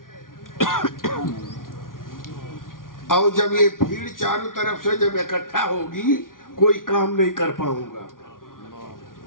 اور جب یہ بھیڑ چاروں طرف سے جب اکٹھا ہوگی، کوئی کام نہیں کر پاؤں گا۔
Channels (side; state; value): right; late; 0.90 ms